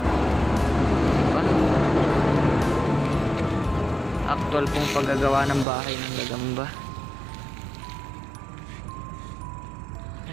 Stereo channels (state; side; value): drops out; left; at 5.7 s